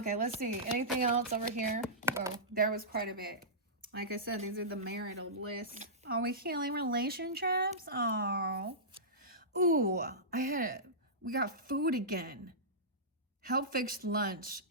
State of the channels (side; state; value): both; normal; correlation -0.17